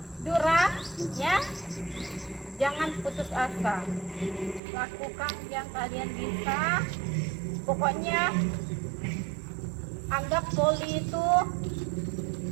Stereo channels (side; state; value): left; drops out; at 4.6 s